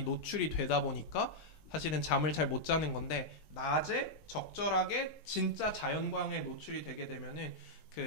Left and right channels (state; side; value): late; right; 19 ms